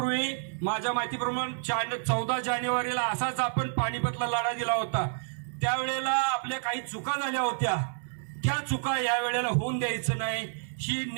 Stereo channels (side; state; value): left; silent; digital silence